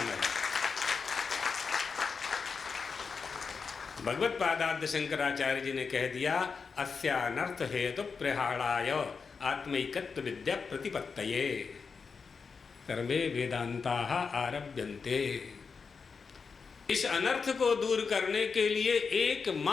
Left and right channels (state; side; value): quieter; right; 5.3 dB